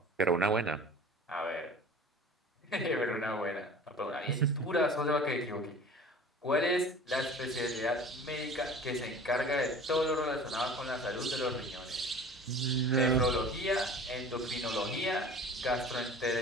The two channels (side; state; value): both; normal; correlation 0.41